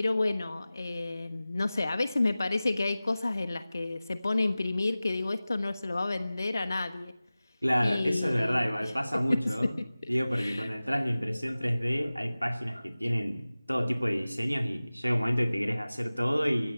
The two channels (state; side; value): inverted; both; correlation -0.97